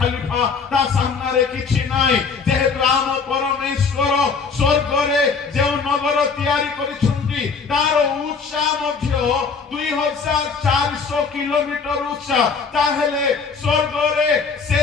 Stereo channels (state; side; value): quieter; right; 5.3 dB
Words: ता सामने रे किछि नै जेहेतु आम परमेश्वर स्वर्ग रे जे नगर तयारी करिछुंती तार उच्चा मध्य 2400 किलोमीटर उच्चा ताहेले स्वर्ग रे से